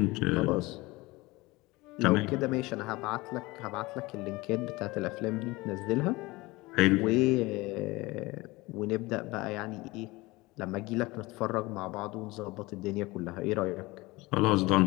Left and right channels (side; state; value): right; quieter; 21.8 dB